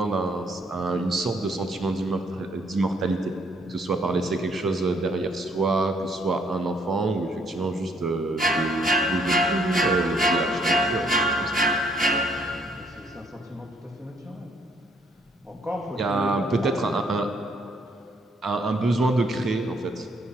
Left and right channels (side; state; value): both; normal; correlation 0.67